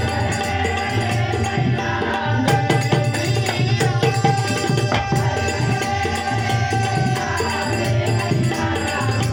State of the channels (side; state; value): both; identical; correlation 1.00